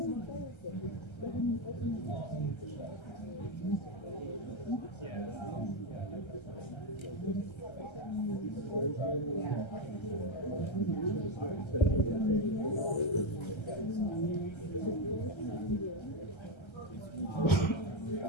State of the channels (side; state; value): right; late; 1.3 ms